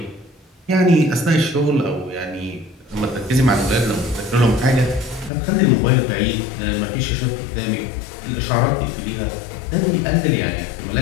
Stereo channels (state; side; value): drops out; right; at 5.3 s